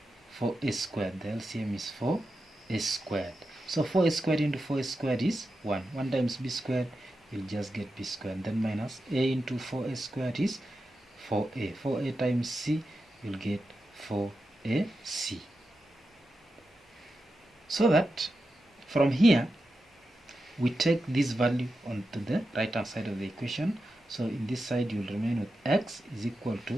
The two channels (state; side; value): normal; both; correlation 0.90